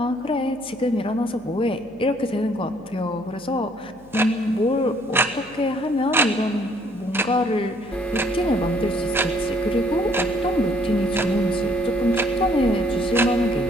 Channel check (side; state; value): left; noise; hum, 26 dB below the sound